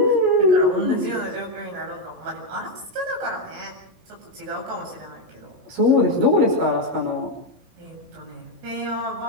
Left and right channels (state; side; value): late; left; 16 ms